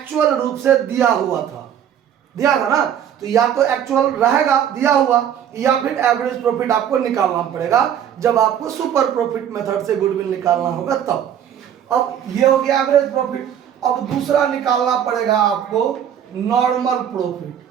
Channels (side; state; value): left; quieter; 9.4 dB